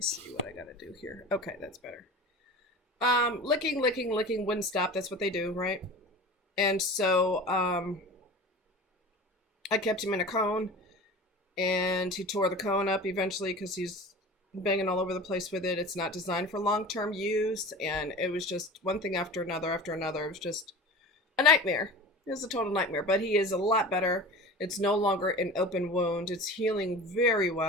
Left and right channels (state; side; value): normal; both; correlation 0.35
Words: see what I gotta do here. Okay, that's better. Licking wouldn't stop. That's what they do, right? And so I kept him in a cone, and he tore the cone up eventually because he's banging all over the place with it. It's not designed for long-term use, and it was just one thing after another after another. It was just a nightmare. It was a total nightmare, but he is a lot better. It's no longer an open wound. It's healing very